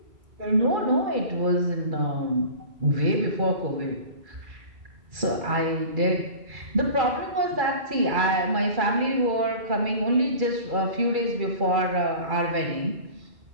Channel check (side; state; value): left; late; 2.3 ms